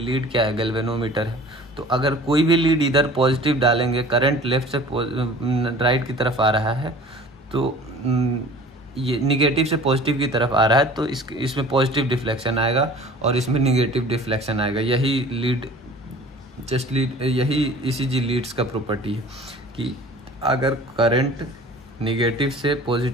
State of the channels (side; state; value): both; normal; correlation 0.45